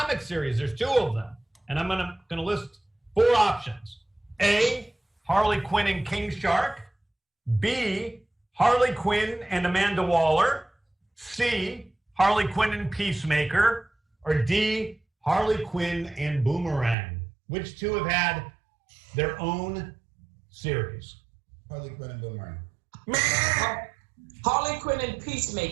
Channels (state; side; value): drops out; left; at 16.9 s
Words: series? There's 2 of them. And I'm gonna list 4 options. A, Harley Quinn and King Shark. B, Harley Quinn and Amanda Waller. C, Harley Quinn and Peacemaker. Or D, Harley Quinn and Boomerang. Which 2 have had their own series? Harley Quinn and Boomerang. Harley Quinn and